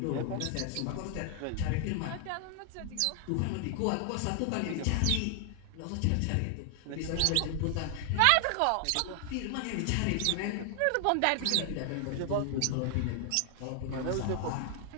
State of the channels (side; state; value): both; different; correlation 0.00